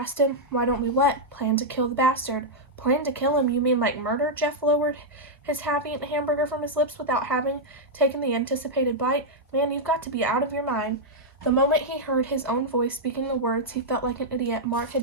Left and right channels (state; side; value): normal; both; correlation -0.05